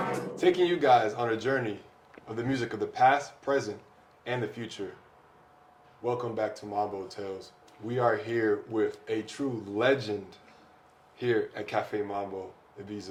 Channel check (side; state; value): both; identical; correlation 1.00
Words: Taking you guys on a journey of the music of the past, present, and the future. Welcome back to Mambo Tales. We are here with a true legend here at Café Mambo